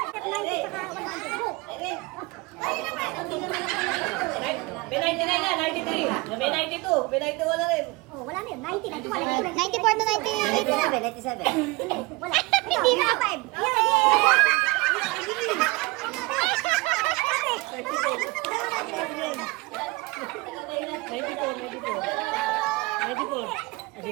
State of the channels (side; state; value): left; quieter; 24.0 dB